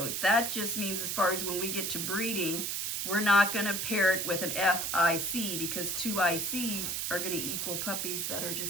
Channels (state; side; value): noise; right; hiss, 1 dB below the sound